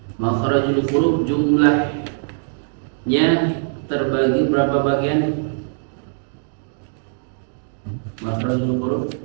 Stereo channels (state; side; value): silent; left; digital silence